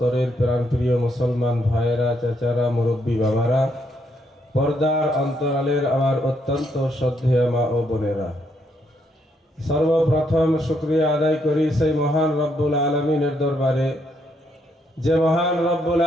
প্রাণপ্রিয় মুসলমান ভাইয়েরা, চাচারা, মুরব্বী বাবারা, পর্দার অন্তরালের আমার অত্যন্ত শ্রদ্ধেয় মা ও বোনেরা, সর্বপ্রথম শুকরিয়া আদায় করি সেই মহান রব্বুল আলামিনের দরবারে, যে মহান রব্বুল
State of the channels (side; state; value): both; normal; correlation 0.75